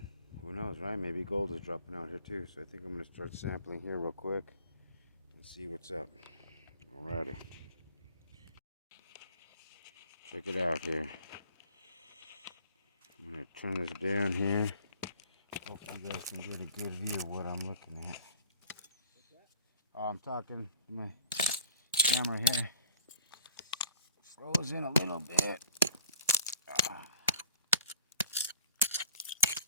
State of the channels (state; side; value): inverted; both; correlation -0.49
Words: who knows, right? Maybe gold is dropping out here too. So I think I'm gonna start sampling here real quick and see what's up. Alrighty. Check it out here. I'm gonna turn this down here. Hope you guys can get a good view of what I'm looking at. Oh, I'm talking to my camera here. Froze in a little bit.